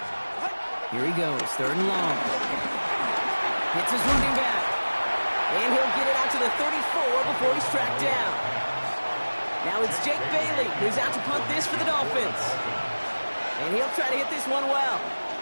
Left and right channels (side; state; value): both; inverted; correlation -1.00